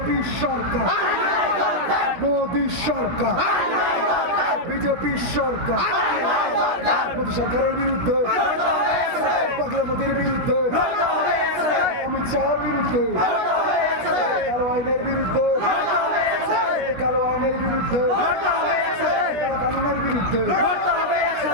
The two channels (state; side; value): late; left; 17 ms